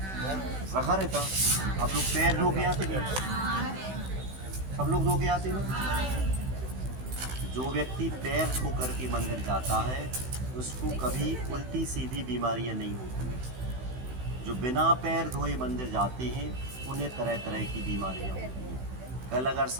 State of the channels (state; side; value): late; left; 16 ms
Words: रखा रहता। आप लोग पैर धो के आते नहीं? सब लोग धो के आते ना। जो व्यक्ति पैर धो करके मंदिर जाता है उसको कभी उल्टी सीधी बीमारियां नहीं होती। जो बिना पैर धोए मंदिर जाते हैं उन्हें तरह तरह की बीमारियां होती हैं। कल अगर